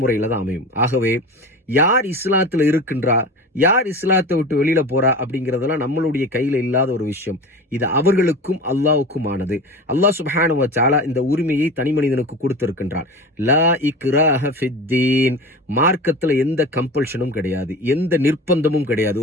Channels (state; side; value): normal; both; correlation 0.32